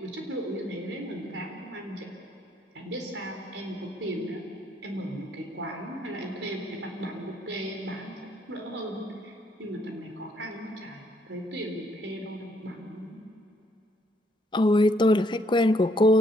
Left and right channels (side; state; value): both; normal; correlation 0.69